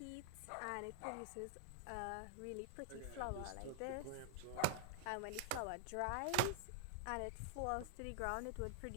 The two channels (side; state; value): both; different; correlation 0.00